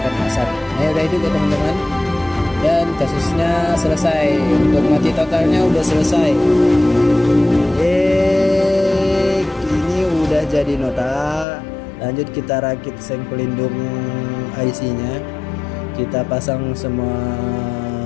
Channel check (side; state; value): right; drops out; at 11.5 s